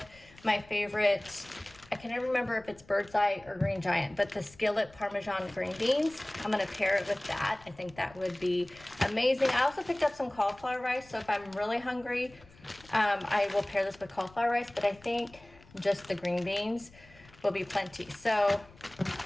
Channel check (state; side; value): noise; left; rumble, 25 dB below the sound